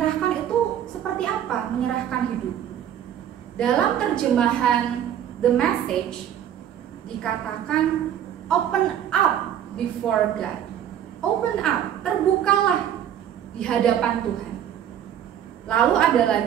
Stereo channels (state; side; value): quieter; left; 10.1 dB